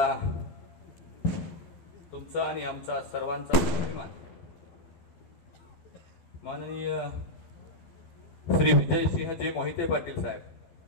तुमचा आणि आमचा सर्वांचा अभिमान माननीय श्री विजयसिंहजी मोहिते पाटील साहेब,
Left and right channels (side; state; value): right; late; 12 ms